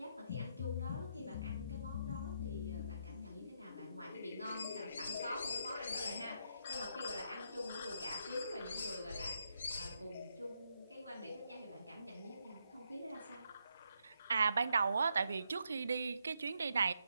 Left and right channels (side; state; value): both; inverted; correlation -0.79